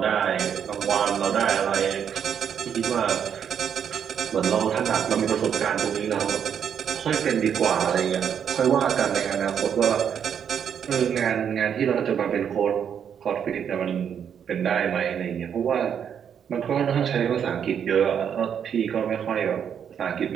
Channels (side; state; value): left; quieter; 8.1 dB